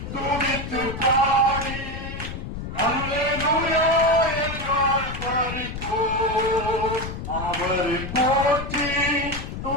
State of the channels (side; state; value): left; noise; rumble, 7 dB below the sound